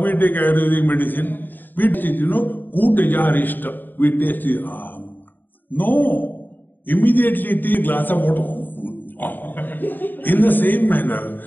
take Ayurvedic medicine? We taste it, Kutajarishta. We taste it. No. Immediately take a glass of water. In the same manner.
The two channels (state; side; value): late; right; 0.090 ms